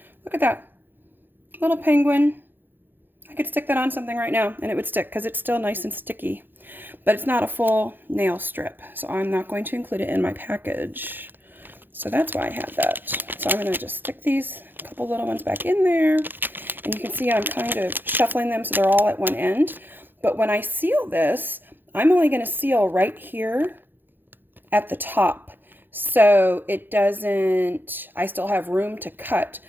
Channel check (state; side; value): late; left; 0.094 ms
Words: Look at that little penguin. I could stick that on something right now and it would stick because it's still nice and sticky. But it's not a full nail strip, so I'm not going to include it in my package. So that's why I had that. So I'm going to just stick these couple little ones back in there. And you can see I'm kind of shuffling them so they're all at one end. But when I seal this, I'm only going to seal right here at the top. So it doesn't, I still have room to cut,